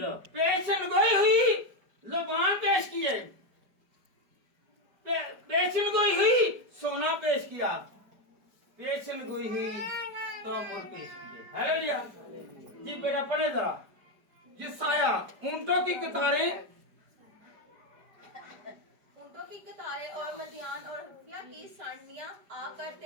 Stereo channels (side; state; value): left; late; 4.9 ms